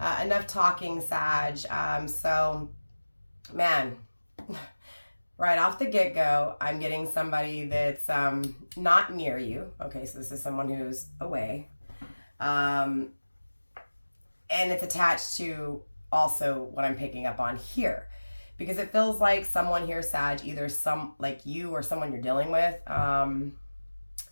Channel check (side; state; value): both; inverted; correlation -1.00